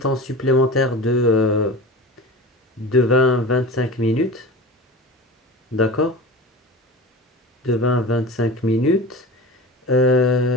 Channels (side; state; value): both; normal; correlation 0.33